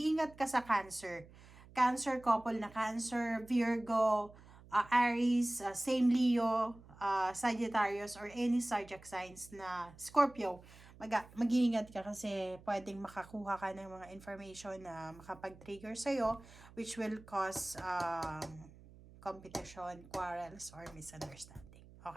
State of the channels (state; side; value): noise; right; hum, 21 dB below the sound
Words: ka sa Cancer. Cancer, couple na Cancer, Virgo, Aries, same Leo, Sagittarius, or any zodiac signs na Scorpio. Mag-iingat ka kasi pwedeng makakuha ka ng mga information na makapag-trigger sa'yo, which will cause competition, quarrels, or misunderstanding.